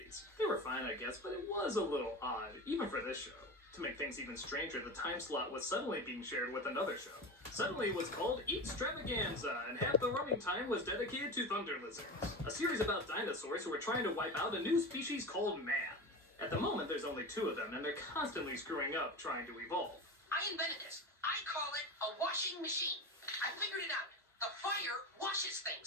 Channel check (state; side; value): normal; both; correlation 0.26